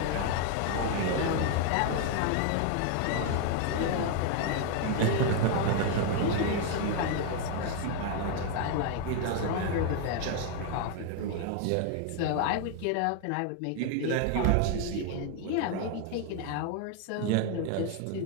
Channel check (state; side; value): different; both; correlation 0.00